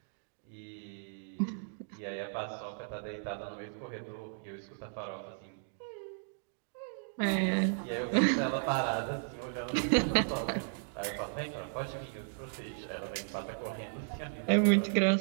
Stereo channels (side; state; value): left; silent; digital silence